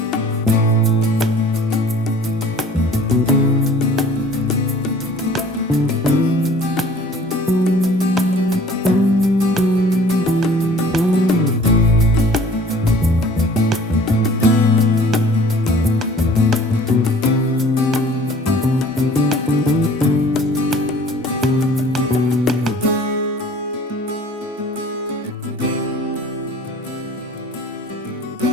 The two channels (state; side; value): normal; both; correlation 0.50